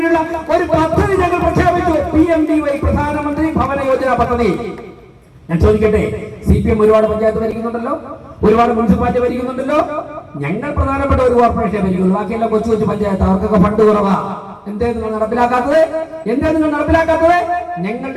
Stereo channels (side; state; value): both; identical; correlation 1.00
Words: ഒരു പദ്ധതി ഞങ്ങൾ പ്രഖ്യാപിച്ചു. PMDY, പ്രധാനമന്ത്രി ഭവന യോജന പദ്ധതി. ഞാൻ ചോദിക്കട്ടെ, CPM ഒരുപാട് പഞ്ചായത്ത് ഭരിക്കുന്നുണ്ടല്ലോ, ഒരുപാട് മുനിസിപ്പാലിറ്റി ഭരിക്കുന്നുണ്ടല്ലോ. ഞങ്ങൾ പ്രധാനപ്പെട്ട ഒരു കോർപ്പറേഷനെ ഭരിക്കുള്ളൂ, ബാക്കിയെല്ലാം കൊച്ചു കൊച്ചു പഞ്ചായത്ത്, അവർക്കൊക്കെ ഫണ്ട് കുറവാ. എന്തേ നിങ്ങൾ നടപ്പിലാക്കാത്തത്?